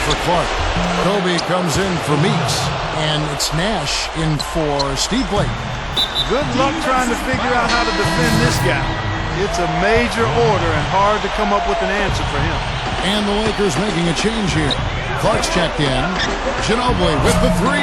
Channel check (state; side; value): identical; both; correlation 1.00